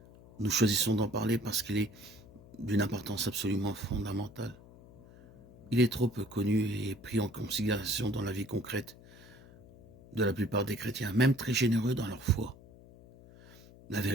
Nous choisissons d'en parler parce qu'il est d'une importance absolument fondamentale. Il est trop peu connu et pris en considération dans la vie concrète de la plupart des chrétiens, même très généreux dans leur foi. La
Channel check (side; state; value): left; noise; hum, 21 dB below the sound